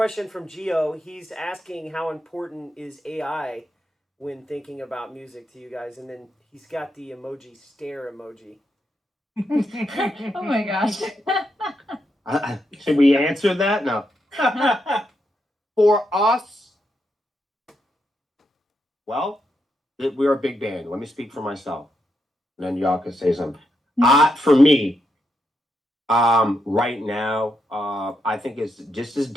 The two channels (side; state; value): both; normal; correlation 0.82